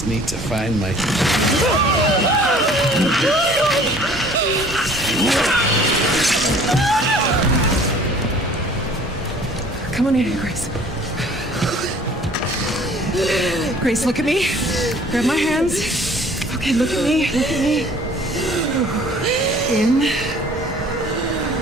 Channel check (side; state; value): both; normal; correlation 0.52